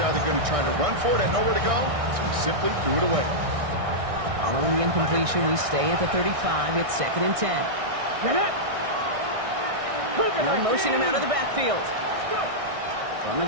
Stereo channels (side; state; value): left; late; 1.6 ms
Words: either going to try to run for it, had nowhere to go, so he simply threw it away. Following the incompletion, we stay at the 35. It's 2nd and 10. Get up. Now motion him out of the backfield. From the